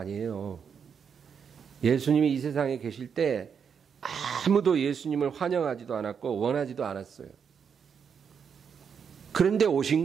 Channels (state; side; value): quieter; left; 6.9 dB